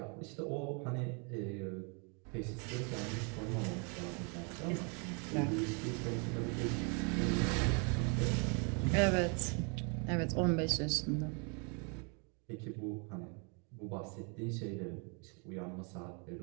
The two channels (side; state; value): left; quieter; 35.5 dB